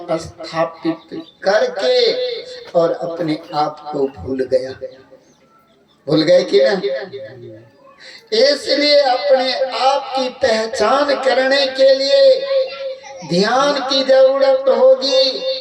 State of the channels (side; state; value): both; identical; correlation 1.00